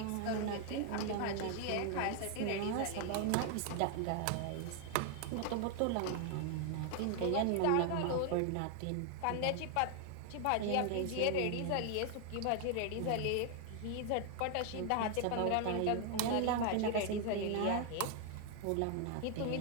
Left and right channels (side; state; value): both; different; correlation 0.00